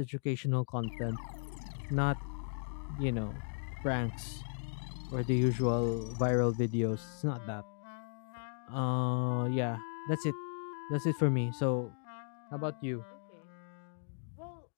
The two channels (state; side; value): silent; right; digital silence